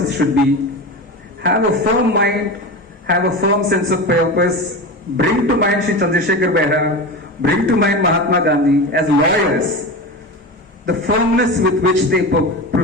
should be. Have a firm mind, have a firm sense of purpose. Bring to mind Shri Chandrasekhar Behra, bring to mind Mahatma Gandhi. As lawyers, the firmness with which they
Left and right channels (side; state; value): both; normal; correlation 0.25